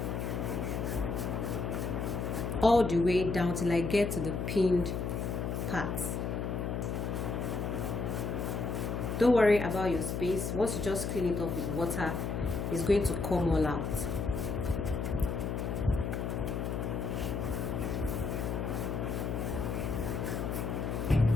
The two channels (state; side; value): noise; left; hum, 2 dB below the sound